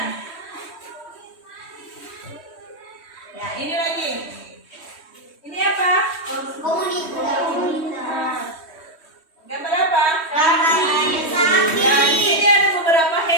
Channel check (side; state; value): right; late; 3.1 ms